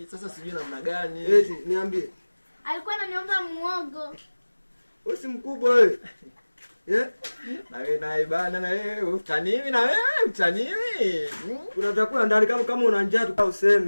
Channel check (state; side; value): inverted; both; correlation -1.00